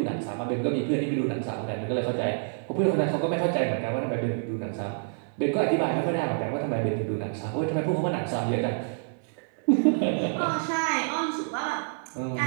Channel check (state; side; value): silent; left; 60 dB below the other